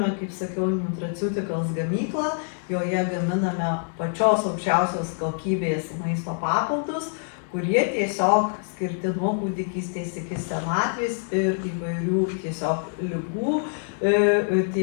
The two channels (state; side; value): silent; right; digital silence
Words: kaip sakiau, Nutraceuticals gamyklą, joje gaminame pačios aukščiausios kokybės maisto papildus, kurie tiesiog skirti nuo kūdikystės iki senatvės ir įvairių tiesiog ligų,